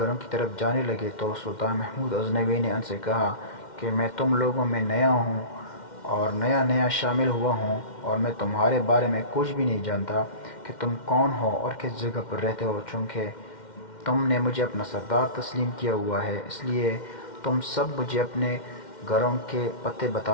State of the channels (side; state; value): right; late; 2.1 ms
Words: کی طرف جانے لگے تو سلطان محمود غزنوی نے ان سے کہا کہ میں تم لوگوں میں نیا ہوں اور نیا شامل ہوا ہوں اور میں تمہارے بارے میں کچھ بھی نہیں جانتا کہ تم کون ہو اور کس جگہ پر رہتے ہو۔ چونکہ تم نے مجھے اپنا سردار تسلیم کیا ہوا ہے اس لیے تم سب مجھے اپنے گھروں کے پتے